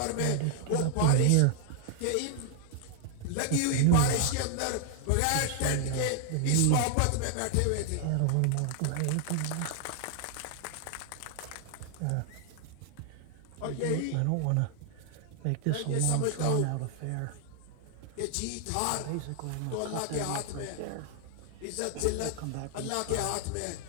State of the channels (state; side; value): different; both; correlation 0.00